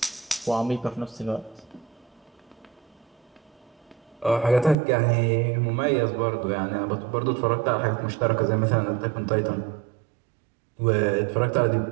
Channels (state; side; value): drops out; left; at 4.8 s